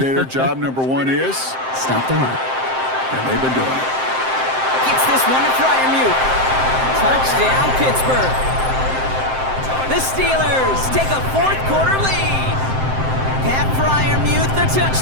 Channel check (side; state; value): left; late; 7.7 ms